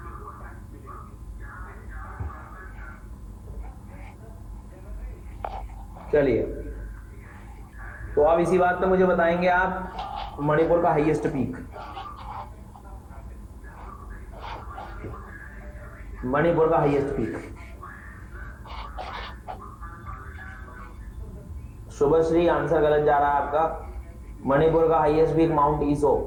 चलिए, तो अब इसी बात पे मुझे बताएंगे आप मणिपुर का हाईएस्ट पीक। मणिपुर का हाईएस्ट पीक, शुभश्री आंसर गलत जा रहा है आपका। मणिपुर का highest peak mount Iso.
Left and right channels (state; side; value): identical; both; correlation 1.00